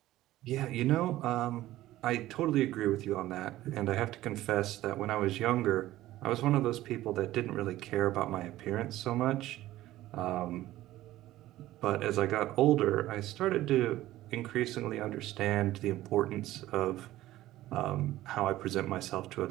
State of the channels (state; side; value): quieter; left; 15.4 dB